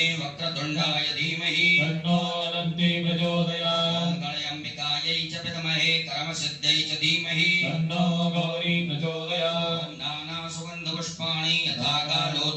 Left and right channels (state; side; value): identical; both; correlation 1.00